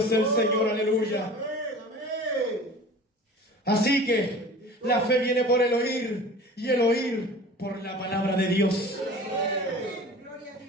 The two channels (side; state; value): both; normal; correlation 0.41